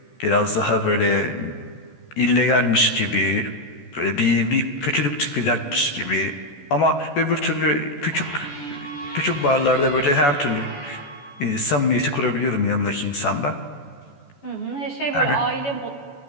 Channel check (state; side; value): late; right; 14 ms